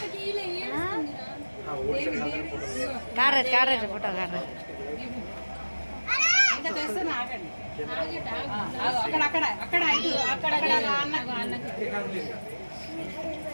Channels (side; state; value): both; inverted; correlation -1.00